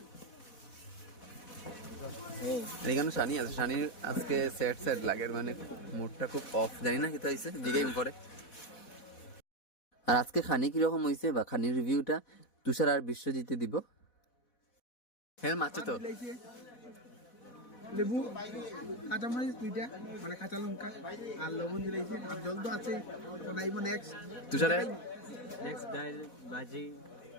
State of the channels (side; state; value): right; late; 4.1 ms